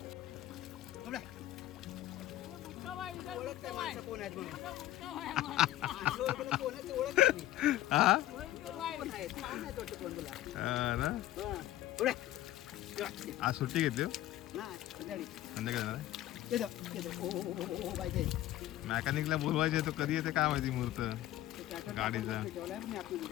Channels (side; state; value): right; quieter; 14.4 dB